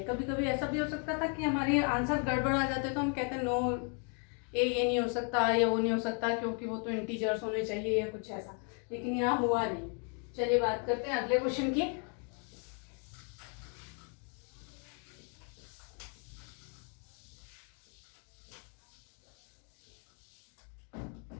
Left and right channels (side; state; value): right; quieter; 39.6 dB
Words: कभी कभी ऐसा भी हो सकता था कि हमारे आंसर गड़बड़ आ जाते, तो हम कहते हैं नो ए ये नहीं हो सकता या वो नहीं हो सकता क्योंकि वो तो इंटीजर्स होने चाहिए या कुछ ऐसा, लेकिन यहाँ हुआ नहीं। चलिए बात करते हैं अगले क्वेश्चन की।